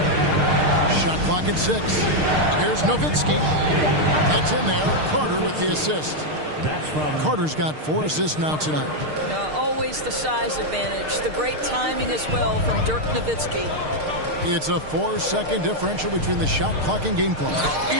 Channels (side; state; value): left; late; 6.6 ms